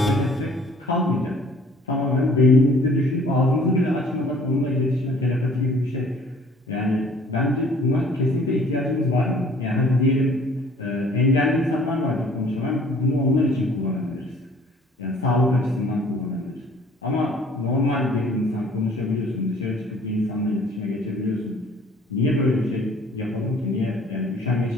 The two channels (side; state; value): both; normal; correlation 0.54